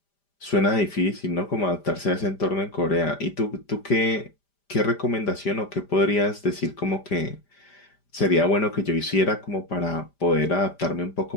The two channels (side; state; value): right; late; 5.0 ms